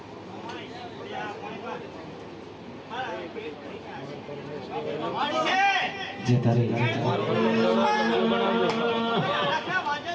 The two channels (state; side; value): identical; both; correlation 1.00